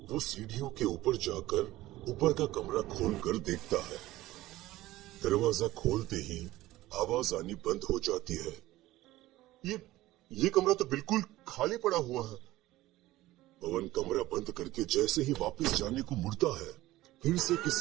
वो सीढ़ियों के ऊपर जाकर ऊपर का कमरा खोलकर देखता है। दरवाजा खोलते ही आवाज आनी बंद हो जाती है। ये कमरा तो बिल्कुल खाली पड़ा हुआ है। पवन कमरा बंद करके जैसे ही वापस जाने को मुड़ता है, फिर से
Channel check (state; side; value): quieter; left; 16.8 dB